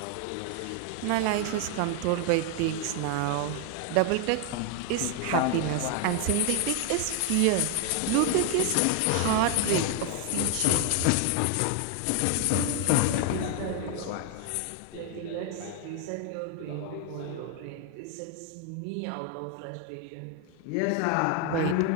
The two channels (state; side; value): different; both; correlation 0.01